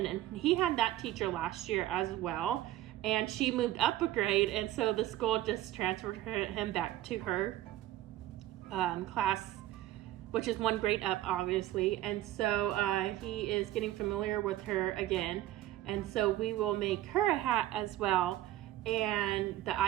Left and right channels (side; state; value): left; quieter; 14.3 dB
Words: and he had that teacher last year as well, and she moved up a grade, and so the school just transferred him back to her class, which is 1 grade up obviously. And so he is getting familiar with her again, and so we will make her a hat as well. And the